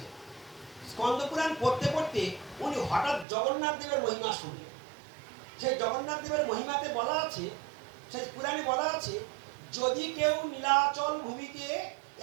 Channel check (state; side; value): drops out; left; at 3.2 s